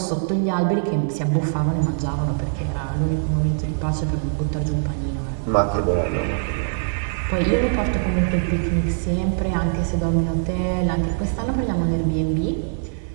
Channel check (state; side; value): silent; left; digital silence